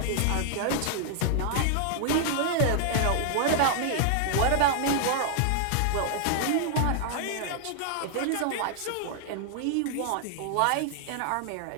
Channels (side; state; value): both; different; correlation -0.01